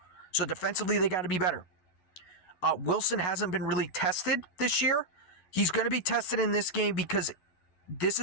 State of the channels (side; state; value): right; late; 11 ms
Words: So defensively, they got to be better. Wilson hasn't been really tested this year. He's going to be tested in this game because this